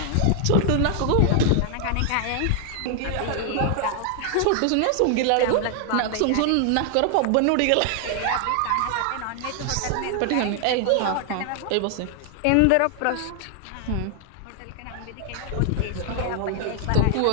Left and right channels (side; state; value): both; different; correlation 0.00